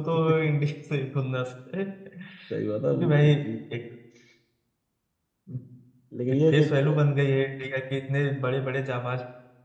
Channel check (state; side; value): identical; both; correlation 1.00